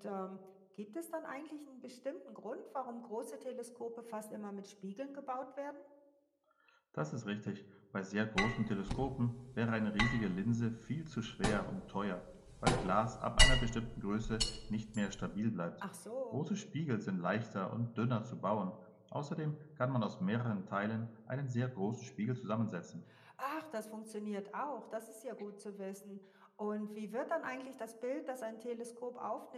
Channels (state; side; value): identical; both; correlation 1.00